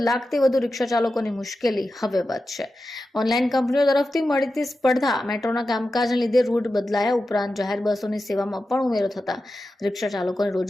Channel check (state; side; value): normal; both; correlation 0.92